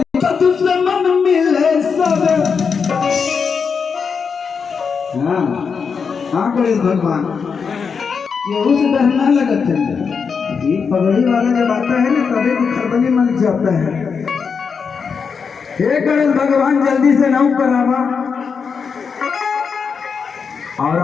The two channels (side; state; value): right; quieter; 5.9 dB